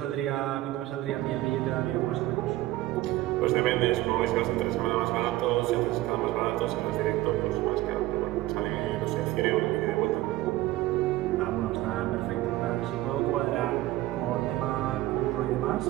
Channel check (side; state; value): left; quieter; 16.6 dB